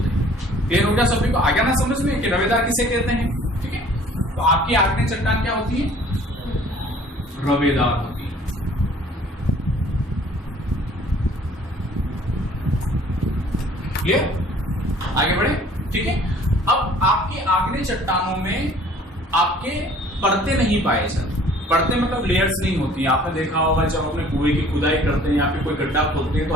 हैं। क्लियर हो गया सभी को? आ गया ना समझ में कि रवेदार किसे कहते हैं? ठीक है, तो आपकी आग्नेय चट्टान क्या होती है? रवेदार होती है। क्लियर? आगे बढ़े? ठीक है, अब आपकी आग्नेय चट्टानों में आपके परतें नहीं पाए जाते। परतें मतलब लेयर्स नहीं होती। आपने देखा होगा जब अपने कुएं की खुदाई करते हैं या फिर कोई गड्ढा खोदते हैं तो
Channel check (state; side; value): normal; both; correlation 0.53